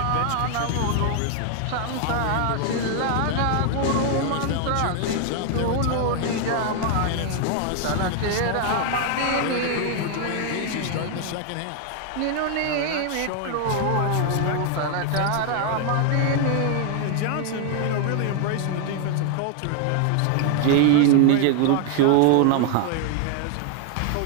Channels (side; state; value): both; different; correlation 0.00